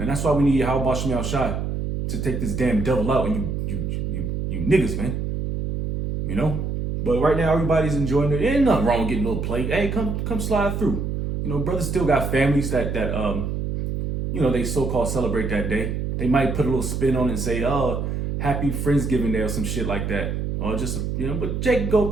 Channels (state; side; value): noise; right; hum, 2 dB below the sound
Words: that's why we need Yahweh Shemel Shai to take this damn devil out and you niggas, man. But right now everybody's enjoying it. Ain't nothing wrong with getting a little plate. Hey, come slide through. Brothers still got families that they so-called celebrate that day. They might put a little spin on it and say, oh, happy Friendsgiving Day or some shit like that. Or just, but Jake go up